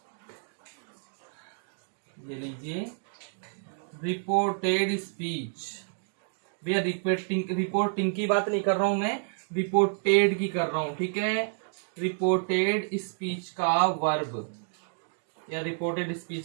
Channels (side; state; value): left; silent; digital silence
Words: ये लीजिए, रिपोर्टेड स्पीच। भैया रिपोर्टिंग की बात नहीं कर रहा हूं मैं, रिपोर्टेड की कर रहा हूं। ठीक है, रिपोर्टेड स्पीच का वर्ब या रिपोर्टेड